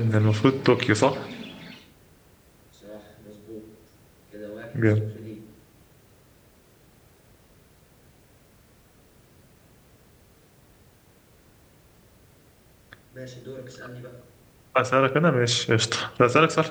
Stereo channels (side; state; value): both; identical; correlation 1.00